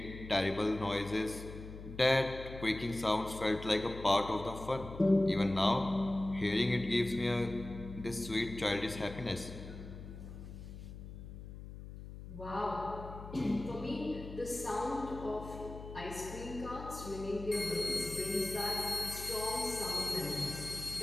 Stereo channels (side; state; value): left; noise; hum, 12 dB below the sound